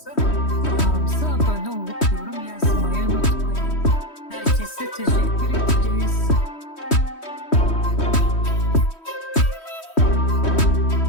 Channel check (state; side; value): late; right; 3.1 ms